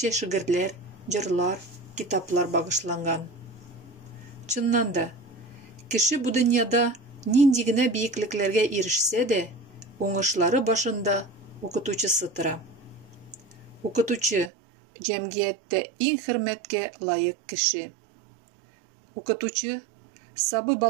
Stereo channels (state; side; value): drops out; left; at 14.5 s